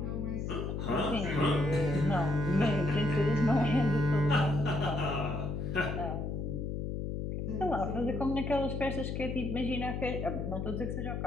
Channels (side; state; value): left; noise; hum, 3 dB below the sound